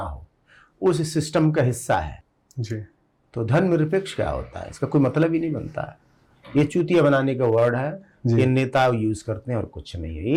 हो, उस सिस्टम का हिस्सा है। जी तो धर्मनिरपेक्ष क्या होता है, इसका कोई मतलब ही नहीं बनता है। ये चूतिया बनाने का वर्ड है, ये नेता यूज करते हैं और कुछ नहीं है।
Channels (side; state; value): both; identical; correlation 1.00